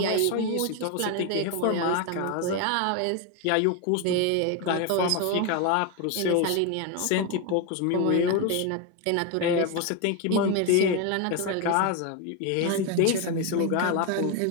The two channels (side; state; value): both; different; correlation 0.02